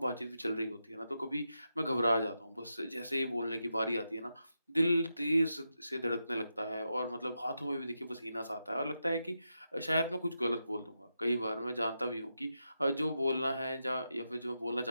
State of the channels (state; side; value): inverted; both; correlation -0.87